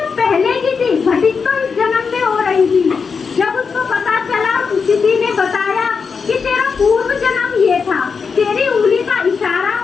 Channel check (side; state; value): right; quieter; 5.5 dB